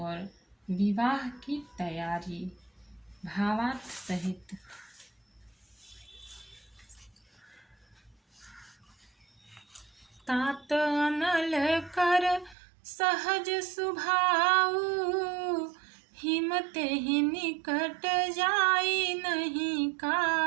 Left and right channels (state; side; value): drops out; left; at 12.6 s